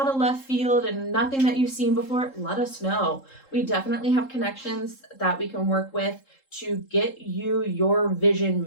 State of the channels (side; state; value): right; late; 3.7 ms